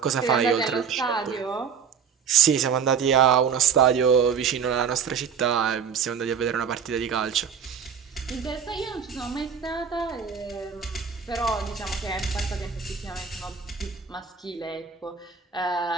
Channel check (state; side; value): quieter; left; 6.8 dB